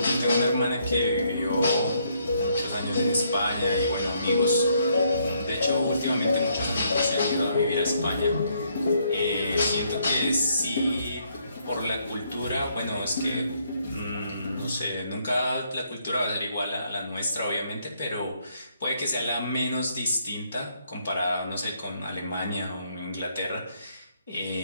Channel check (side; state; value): both; inverted; correlation -0.71